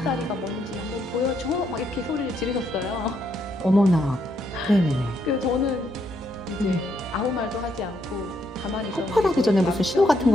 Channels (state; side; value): normal; both; correlation 0.76